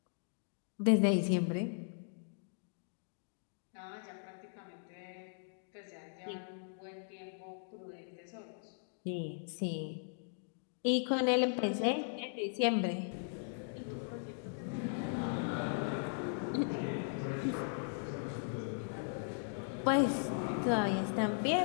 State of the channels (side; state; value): right; silent; digital silence